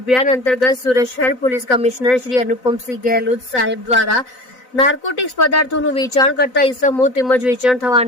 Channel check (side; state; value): right; late; 4.0 ms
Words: અંતર્ગત સુરત શહેર પોલીસ કમિશનર શ્રી અનુપમસિંહ ગેહલોત સાહેબ દ્વારા નાર્કોટિક્સ પદાર્થોનું વેચાણ કરતા ઇસમો તેમજ વેચાણ